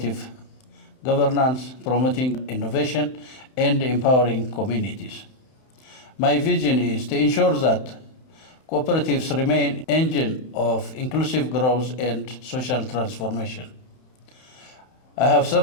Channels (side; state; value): right; late; 31 ms